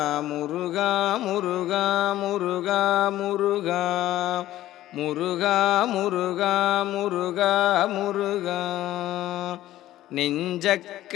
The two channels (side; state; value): right; quieter; 14.4 dB